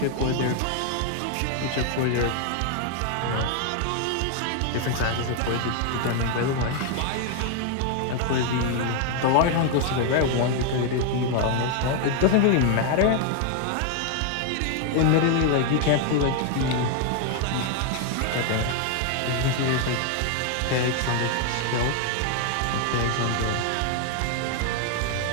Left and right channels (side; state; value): both; different; correlation 0.00